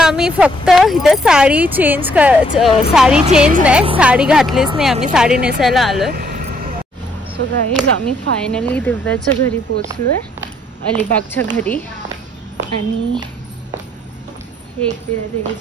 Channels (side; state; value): both; normal; correlation 0.68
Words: आम्ही फक्त इथे साडी चेंज नाही, साडी घातलीच नाही आम्ही, साडी नेसायला आलोय. सो गाईज आम्ही फायनली दिव्याच्या घरी पोचलोय, अलिबागच्या घरी. आणि हे एक